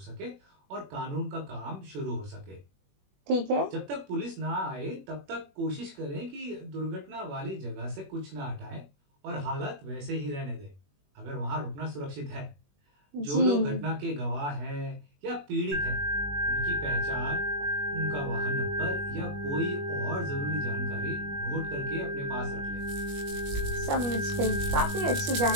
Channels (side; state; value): left; late; 21 ms